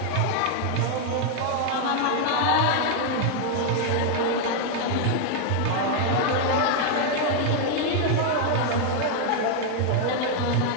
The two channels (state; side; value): different; both; correlation 0.00